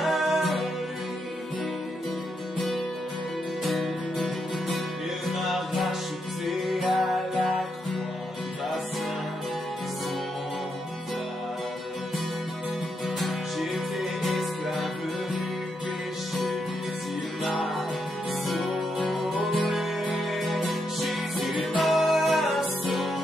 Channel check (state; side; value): normal; both; correlation 0.81